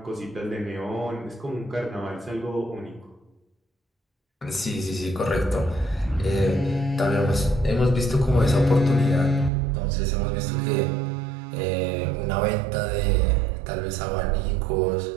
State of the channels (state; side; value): drops out; left; at 9.5 s